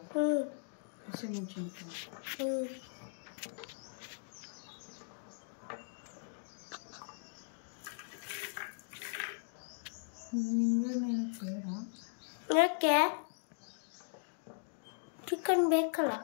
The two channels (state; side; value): silent; right; digital silence